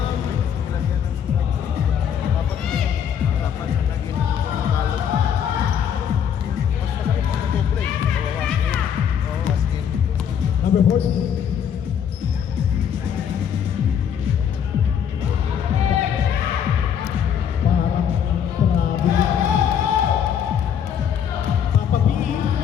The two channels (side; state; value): right; quieter; 8.4 dB